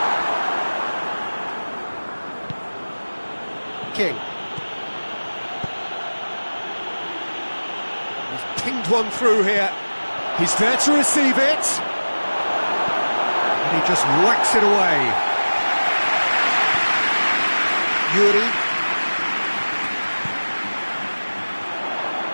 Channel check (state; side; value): inverted; both; correlation -1.00